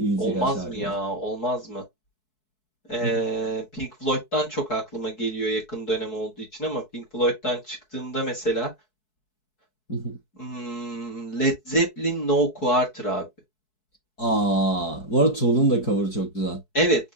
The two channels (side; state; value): right; late; 4.6 ms